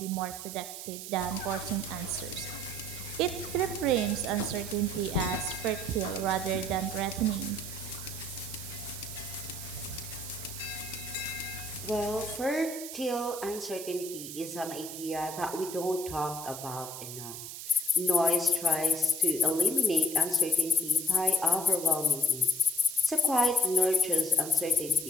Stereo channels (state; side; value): noise; right; hiss, 9 dB below the sound